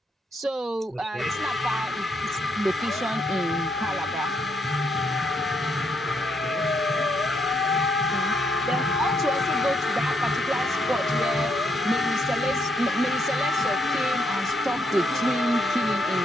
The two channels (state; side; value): normal; both; correlation 0.75